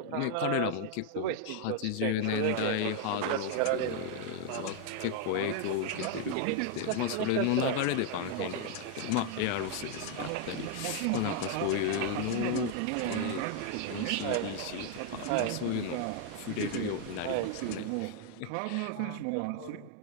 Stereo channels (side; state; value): both; different; correlation 0.00